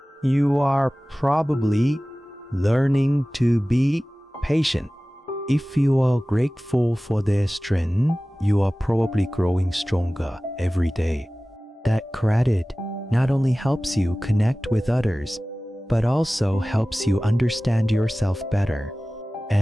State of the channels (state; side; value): normal; both; correlation 0.97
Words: you are probably learning to be patient. If you are grateful for their strength, you are probably growing stronger every day. That gratitude not only helps you connect with others, but also helps you understand yourself better.